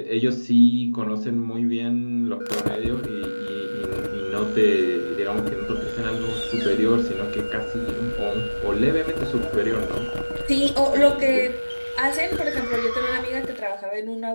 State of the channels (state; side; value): inverted; both; correlation -1.00